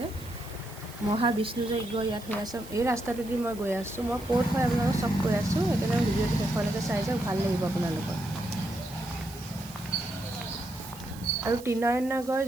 মহাবিষ্ণু যজ্ঞ ইয়াত হৈ আছে। এই ৰাস্তাটোদি মই গৈ আছোঁ। মই ক'ত হয় আপোনালোকক চব কৈ আছোঁ, সেইকাৰণে ভিডিঅ'টো শেষলৈকে চাই যাওক, ভাল লাগিব আপোনালোকৰ। আৰু ত্ৰিনয়নগৰ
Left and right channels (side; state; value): right; noise; hiss, 18 dB below the sound